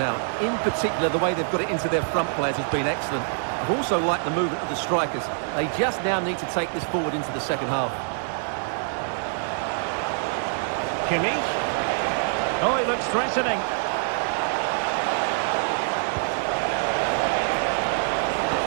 In particular, the way they've got it into their front players has been excellent. I've also liked the movement of the strikers. They just now need to take this forward into the second half. Kimmich. Oh, he looks threatening.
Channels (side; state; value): left; silent; 62 dB below the other